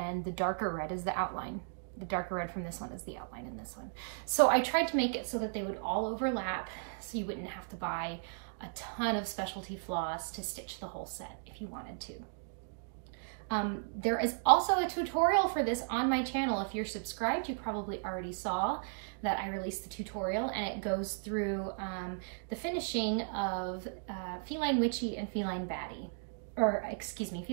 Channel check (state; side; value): silent; left; digital silence